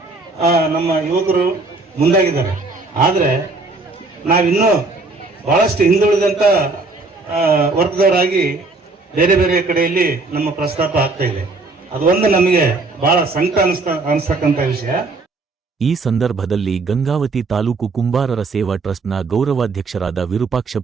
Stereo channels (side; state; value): left; quieter; 3.6 dB